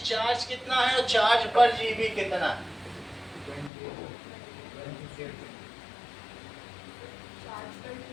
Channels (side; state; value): right; drops out; at 3.7 s